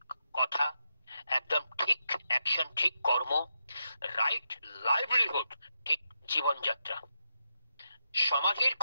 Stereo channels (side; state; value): both; inverted; correlation -0.84